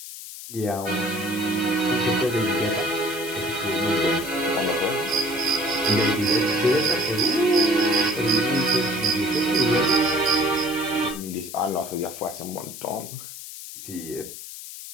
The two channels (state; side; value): noise; left; hiss, 12 dB below the sound